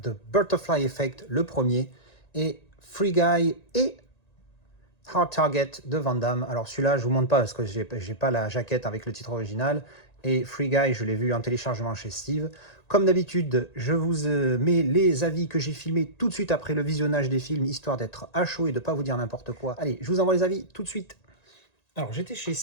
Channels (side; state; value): right; late; 1.9 ms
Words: The Butterfly Effect, le premier, et Free Guy et Hard Target de Van Damme. Alors celui-là je vous montre pas parce que j'ai pas la jaquette avec le titre original, et Free Guy je l'ai vu en téléchargement chez Steve. Comme d'habitude, je vous mets les avis que j'ai filmés tout de suite après le visionnage des films, histoire d'être à chaud et de pas vous dire n'importe quoi. Allez, je vous envoie les avis tout de suite. Alors j'étais chez